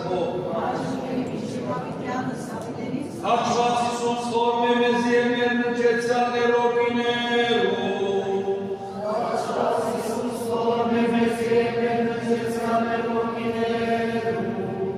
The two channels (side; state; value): both; identical; correlation 1.00